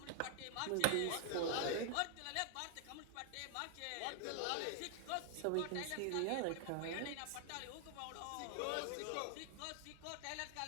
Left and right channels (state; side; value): different; both; correlation 0.00